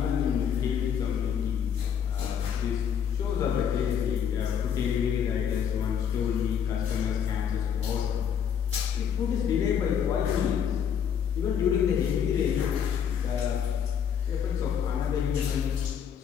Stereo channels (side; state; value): right; quieter; 8.1 dB